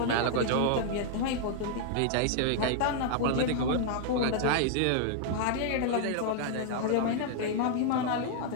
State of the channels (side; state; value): both; different; correlation 0.00